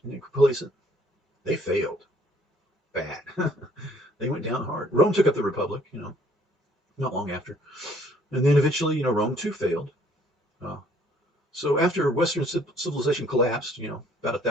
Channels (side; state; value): both; normal; correlation 0.61